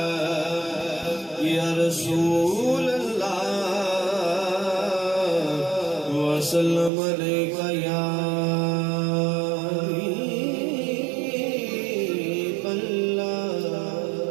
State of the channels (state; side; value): drops out; left; at 6.9 s